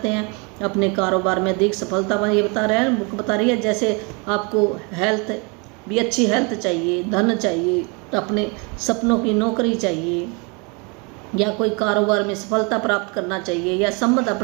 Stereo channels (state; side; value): quieter; left; 31.3 dB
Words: हैं, अपने कारोबार में अधिक सफलता पाना, ये बता रहे हैं बुक बता रही है, जैसे आपको हेल्थ भी अच्छी हेल्थ चाहिए, धन चाहिए, अपने सपनों की नौकरी चाहिए, या कोई कारोबार में सफलता प्राप्त करना चाहिए, या संबंध